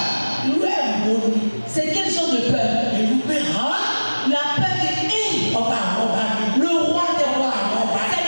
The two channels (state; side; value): inverted; both; correlation -1.00